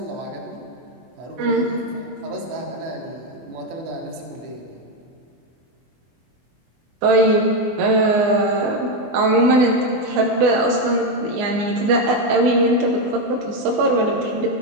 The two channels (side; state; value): left; late; 24 ms